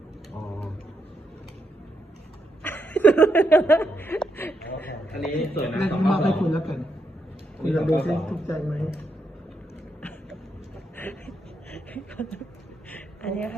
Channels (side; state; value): both; normal; correlation 0.81